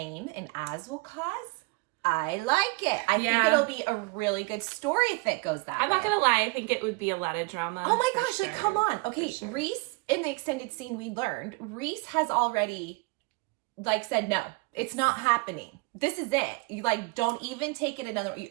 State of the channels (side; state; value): left; quieter; 27.7 dB